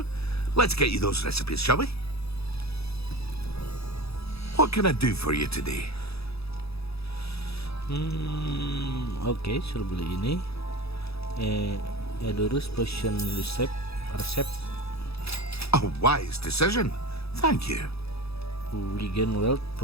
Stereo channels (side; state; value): right; late; 0.78 ms